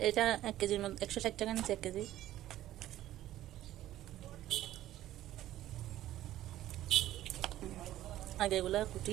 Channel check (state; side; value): quieter; left; 13.7 dB